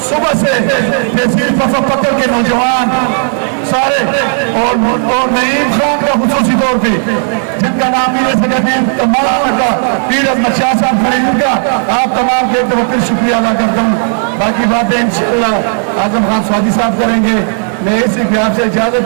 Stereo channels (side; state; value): left; silent; 60 dB below the other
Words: صبح سے تحصیل وفا پکڑ کے نوجوان سارے، اور نعیم خان تمام کا خصوصی طور پہ جن کا نام نہیں لے سکتے ہیں تمام کا پیر احمد شاہ صاحب کھڑے ان کا آپ تمام کے بہت شکریہ ادا کرتا ہوں. باقی باتیں انشاءاللہ اعظم خان سوادی صاحب کریں گے. میں اسی پہ آپ سے